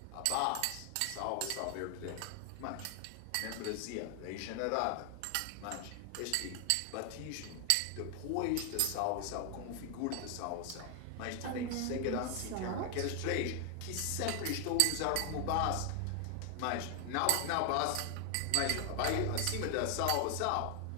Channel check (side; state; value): both; different; correlation 0.00